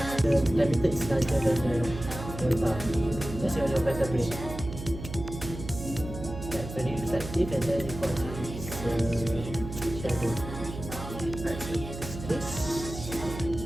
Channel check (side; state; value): right; noise; hum, 9 dB below the sound